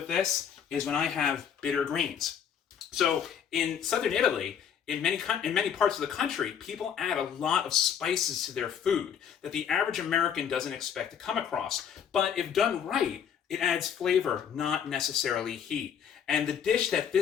this is when I have bitter greens. So in southern Italy, in many parts of the country, people add a lot of spices to their food that the average American doesn't expect to come across. But if done right, it adds flavor, not necessarily heat. And the dish that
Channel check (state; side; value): quieter; right; 8.2 dB